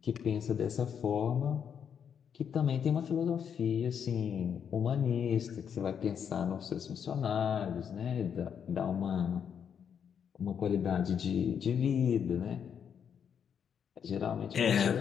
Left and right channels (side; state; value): right; quieter; 7.8 dB